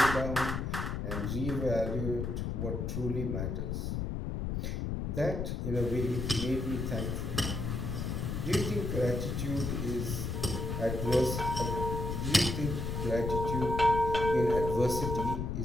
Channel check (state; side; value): noise; left; rumble, 2 dB below the sound